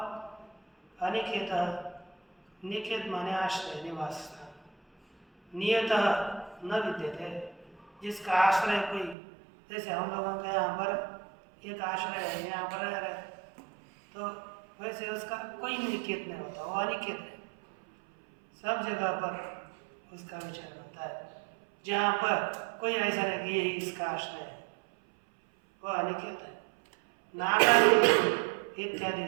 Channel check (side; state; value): left; drops out; at 9.2 s